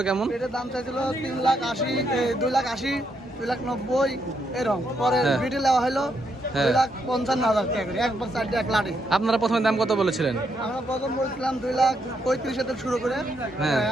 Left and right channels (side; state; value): both; normal; correlation 0.78